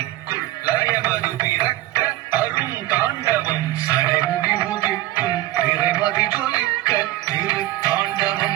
லயமது பிறக்க அருந்தாண்டவம் சடைமுடி உதிக்கும் பிறைமதி ஜொலிக்க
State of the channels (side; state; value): left; quieter; 16.1 dB